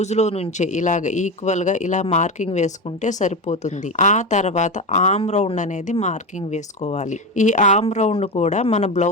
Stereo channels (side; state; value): both; normal; correlation 0.18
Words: లో నుంచే ఇలాగ ఈక్వల్ గా ఇలా మార్కింగ్ వేసుకుంటే సరిపోతుంది. ఆ తర్వాత ఆర్మ్ రౌండ్ అనేది మార్కింగ్ వేసుకోవాలి. ఈ ఆర్మ్ రౌండ్ కూడా మన